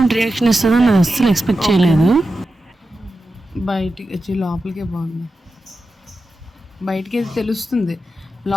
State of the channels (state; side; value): normal; both; correlation 0.91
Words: రియాక్షన్ ఇస్తుందని నేను అస్సలు ఎక్స్పెక్ట్ చేయలేదు. బయటికి వచ్చి లోపలికే బాగుంది. బయటికి అయితే తెలుస్తుంది,